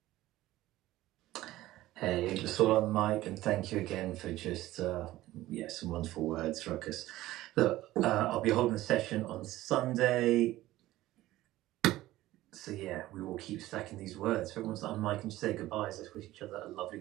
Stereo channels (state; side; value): quieter; left; 16.1 dB